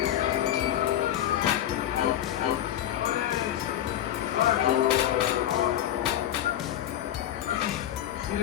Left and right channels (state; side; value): quieter; right; 11.9 dB